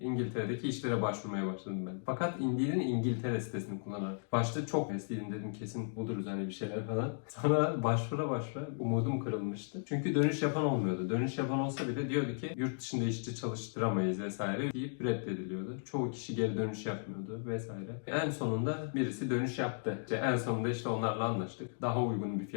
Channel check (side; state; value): right; silent; digital silence